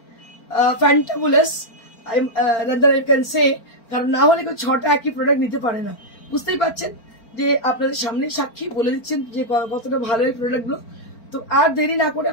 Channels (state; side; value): late; right; 4.4 ms